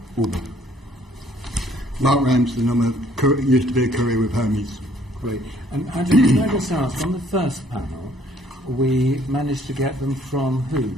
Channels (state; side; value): normal; both; correlation 0.62